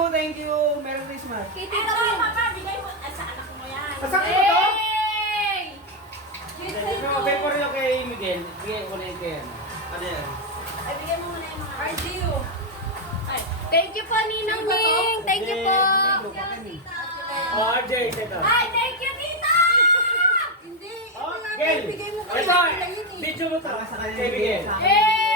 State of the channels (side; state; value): both; normal; correlation 0.04